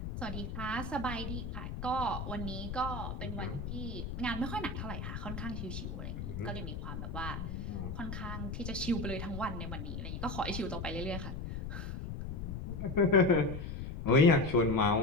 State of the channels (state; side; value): noise; left; rumble, 5 dB below the sound